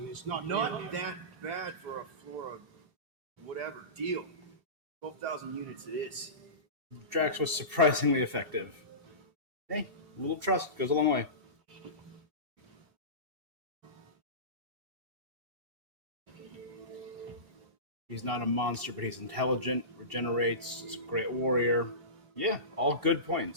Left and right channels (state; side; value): late; left; 2.7 ms